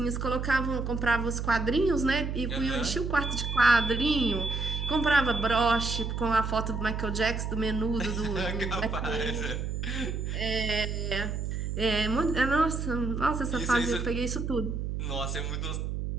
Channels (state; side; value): noise; right; hum, 3 dB below the sound